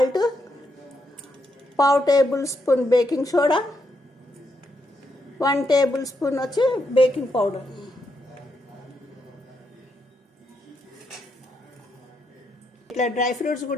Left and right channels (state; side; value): normal; both; correlation 0.80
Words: పావు table spoon baking soda, 1 table spoon వచ్చి బేకింగ్ పౌడర్. ఇట్లా డ్రై ఫ్రూట్స్